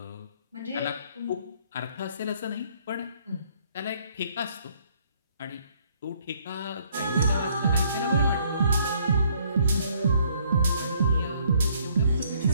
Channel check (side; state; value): both; inverted; correlation -0.65